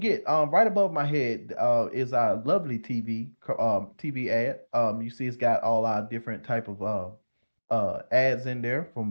right above my head is our lovely TV ad. You see, it's got all our different type of ads in there, from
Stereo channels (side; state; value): both; inverted; correlation -1.00